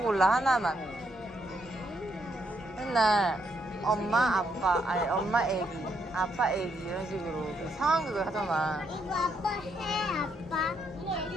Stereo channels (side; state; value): both; normal; correlation 0.75